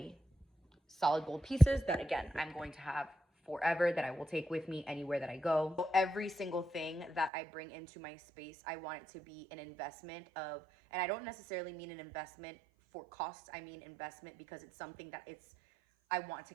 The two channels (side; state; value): left; drops out; at 7.3 s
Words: solid gold pieces that, again, I'm going to have forever, that I will take with me anywhere that I go. So every single thing that I bring into my space, I want it to be an investment of, and I don't necessarily mean an investment for costs. I mean investment because it's something that I want to